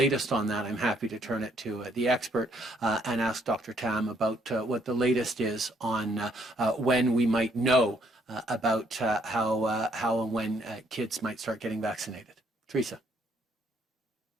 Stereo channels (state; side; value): normal; both; correlation 0.68